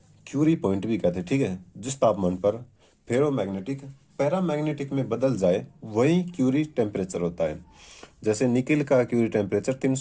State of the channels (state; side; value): identical; both; correlation 1.00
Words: क्यूरी पॉइंट भी कहते हैं, ठीक है। जिस तापमान पर फेरोमैग्नेटिक पैरामैग्नेटिक में बदल जाए वही क्यूरी टेम्परेचर होता है। जैसे निकिल का क्यूरी टेम्परेचर